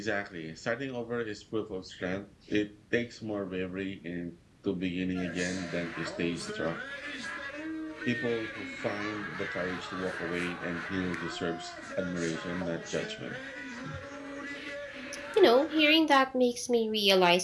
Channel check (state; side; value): identical; both; correlation 1.00